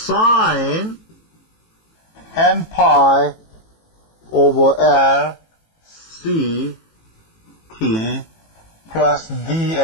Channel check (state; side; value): late; right; 18 ms